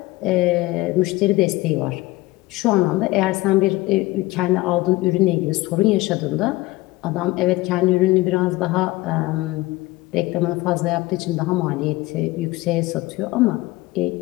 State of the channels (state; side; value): quieter; right; 19.8 dB